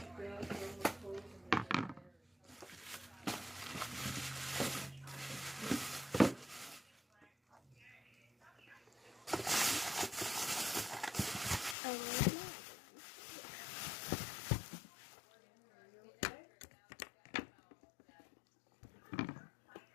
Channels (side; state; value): right; drops out; at 11.8 s